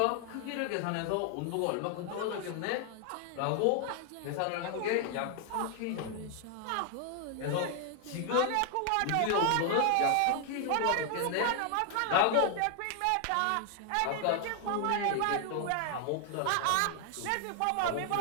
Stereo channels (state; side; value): different; both; correlation 0.00